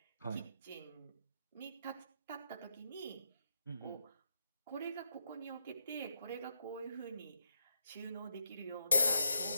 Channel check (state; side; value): inverted; both; correlation -0.78